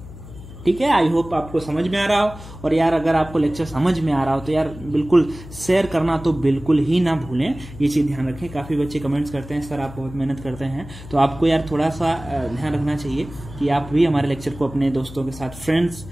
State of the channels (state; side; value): noise; left; hum, 15 dB below the sound